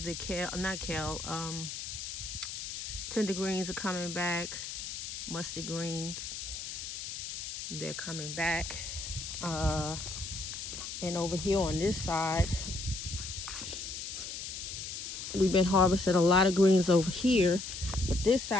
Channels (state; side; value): noise; left; hiss, 7 dB below the sound